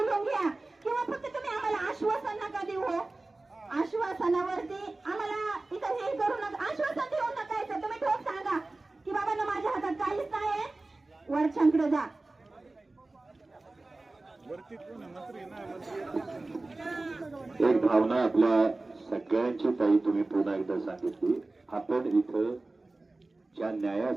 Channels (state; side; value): quieter; left; 3.1 dB